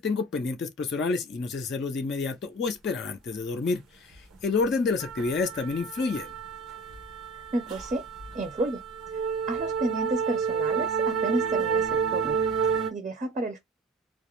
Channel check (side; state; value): both; normal; correlation 0.39